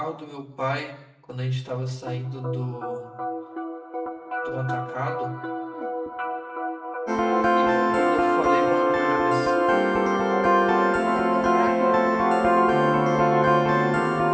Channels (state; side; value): identical; both; correlation 1.00